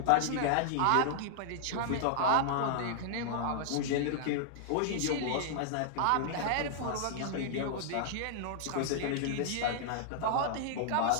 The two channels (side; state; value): both; different; correlation -0.01